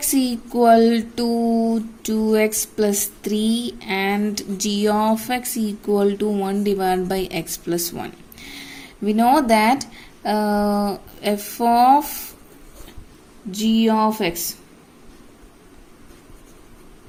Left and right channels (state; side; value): identical; both; correlation 1.00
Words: equal to 2x plus 3 and g of x equal to 1 divided by x plus 1. We know that f of g of x